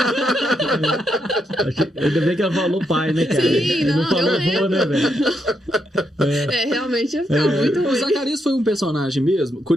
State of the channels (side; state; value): both; normal; correlation 0.80